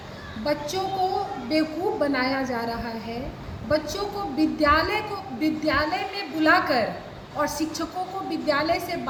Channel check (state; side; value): identical; both; correlation 1.00